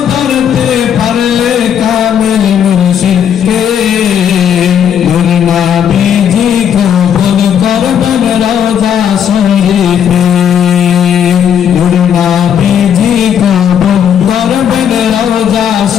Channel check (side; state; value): right; quieter; 8.8 dB